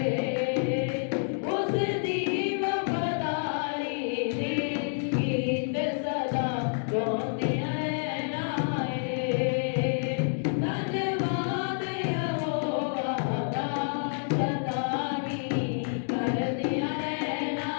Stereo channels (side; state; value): right; silent; digital silence